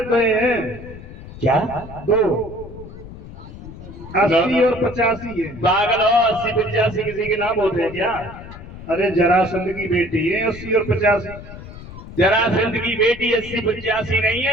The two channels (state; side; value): noise; left; rumble, 14 dB below the sound